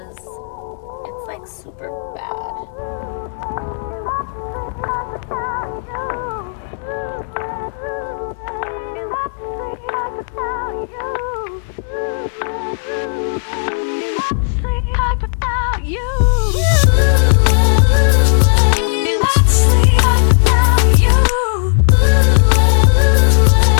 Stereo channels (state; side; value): silent; right; 70 dB below the other